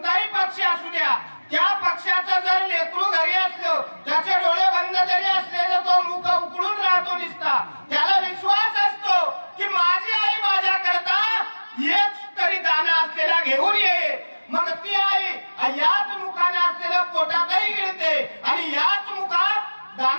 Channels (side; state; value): both; inverted; correlation -1.00